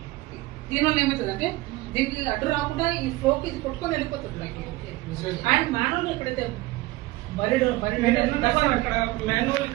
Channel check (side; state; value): left; quieter; 19.7 dB